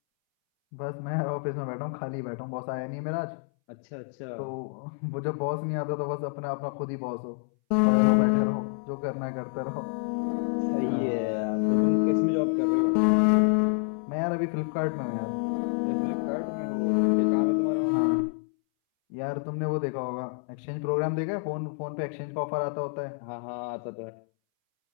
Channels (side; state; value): right; silent; 59 dB below the other